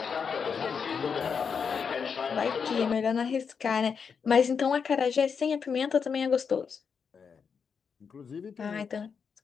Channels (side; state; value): right; quieter; 6.2 dB